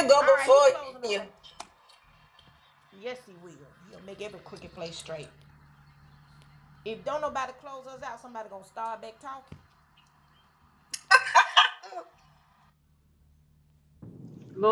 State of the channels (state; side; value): identical; both; correlation 1.00